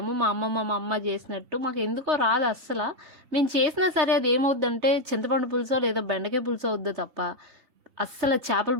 మా అమ్మమ్మ, మా అమ్మ చేసినట్టు మాకెందుకో రాదు అస్సల. మేము చేసినా సరే అది ఏమవుద్దంటే చింతపండు పులుసో లేదా బెండకాయ పులుసో అవుద్దో తప్ప అస్సల చేపల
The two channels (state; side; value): late; left; 3.2 ms